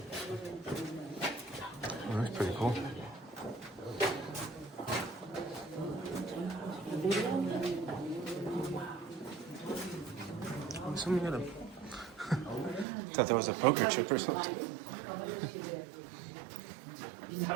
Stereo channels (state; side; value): drops out; left; at 12.9 s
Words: Oh, that's pretty cool. Someone got a... thought that was a poker chip or something.